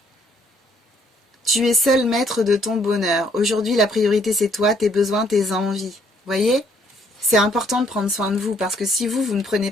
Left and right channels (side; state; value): both; normal; correlation 0.66